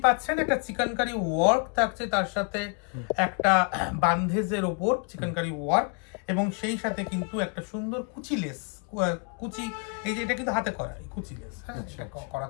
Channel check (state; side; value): quieter; right; 38.0 dB